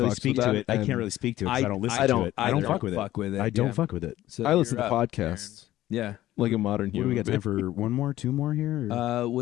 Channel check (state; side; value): quieter; right; 14.6 dB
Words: fucks speak with to that, it. I and can't really speak to it because I don't listen I to don't- it. I don't I fuck don't with fuck it. with it, I don't yeah. fuck with it. So I listen to you're up, podcasts Yeah. like a modern What do human. we got time being. for? One more, two more here? or-